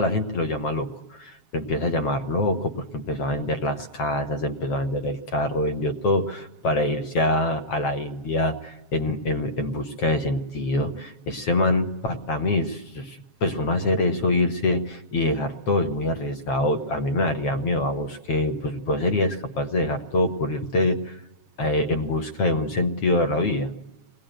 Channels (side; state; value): right; late; 7.4 ms